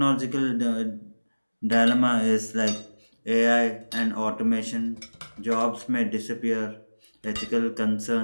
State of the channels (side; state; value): both; inverted; correlation -1.00